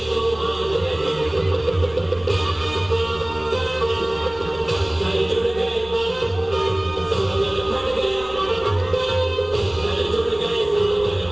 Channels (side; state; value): right; noise; rumble, 21 dB below the sound